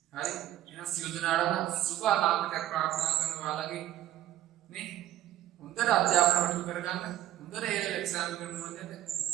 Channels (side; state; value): left; quieter; 13.1 dB